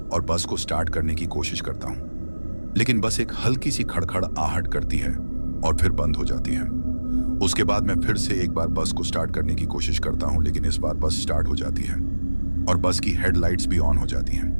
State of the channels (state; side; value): inverted; both; correlation -1.00